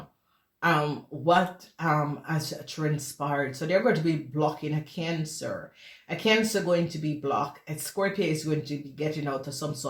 what has transpired. So they're going to be blocking a Cancer. A Cancer going to be blocked. A Scorpio is going to be getting out of some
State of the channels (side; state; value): both; identical; correlation 1.00